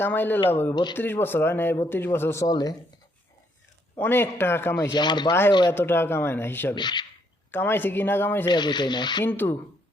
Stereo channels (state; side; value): normal; both; correlation 0.71